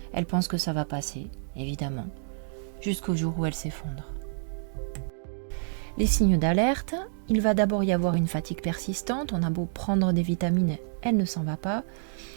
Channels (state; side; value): silent; left; digital silence